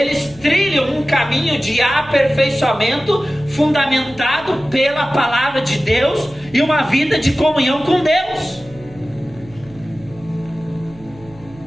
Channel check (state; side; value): noise; right; hum, 23 dB below the sound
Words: trilham um caminho de aperfeiçoamento fundamentado pela palavra de Deus e uma vida de comunhão com Deus.